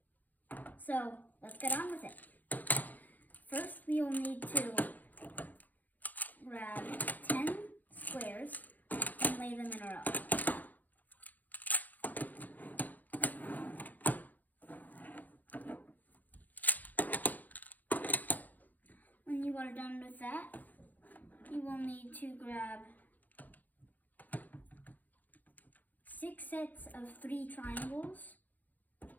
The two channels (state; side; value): late; right; 0.083 ms